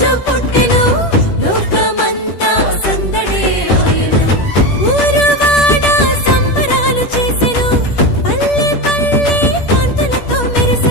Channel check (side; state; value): right; late; 10 ms